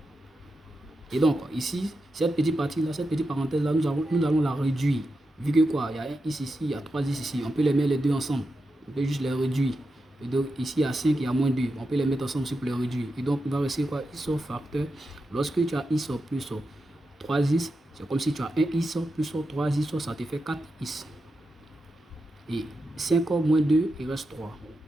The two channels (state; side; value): normal; both; correlation 0.88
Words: Et donc, ici, cette petite partie-là, cette petite parenthèse-là, nous allons la réduire. Vu que quoi, il y a un x ici, il y a 3x ici. On peut les mettre les deux ensemble. On peut juste les réduire. Et donc, ici, il y a 5, il y a moins 2. On peut les mettre ensemble aussi pour les réduire. Et donc, il va rester quoi? X facteur. Lorsque tu as x plus 3x, c'est comme si tu as un x plus 3x, ça te fait 4x. Et 5 moins 2, il reste 3.